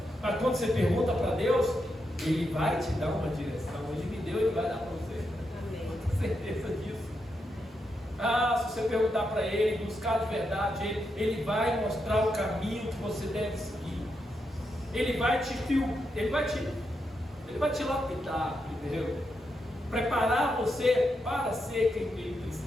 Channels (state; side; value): normal; both; correlation 0.84